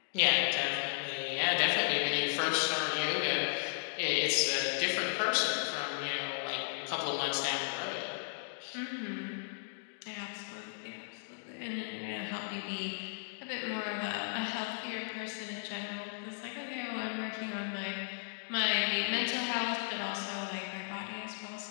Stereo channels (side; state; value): right; silent; digital silence